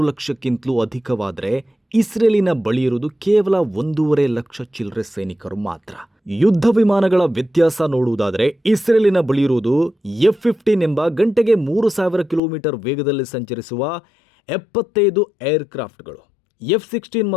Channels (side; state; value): right; drops out; at 12.4 s